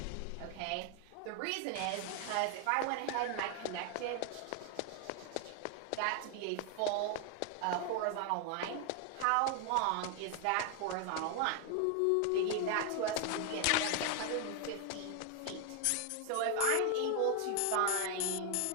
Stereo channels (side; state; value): both; different; correlation 0.00